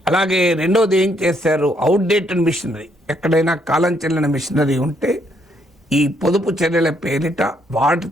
అలాగే రెండోది ఏం చేశారు? అవుట్డేటెడ్ మిషనరీ, ఎక్కడైనా కాలం చెల్లిన మిషనరీ ఉంటే ఈ పొదుపు చర్యల పేరిట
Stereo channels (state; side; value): normal; both; correlation 0.72